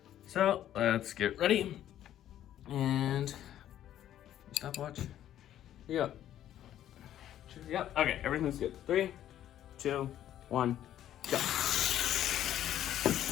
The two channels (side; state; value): right; quieter; 11.7 dB